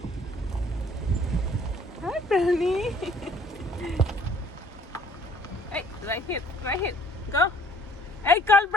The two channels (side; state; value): both; normal; correlation 0.57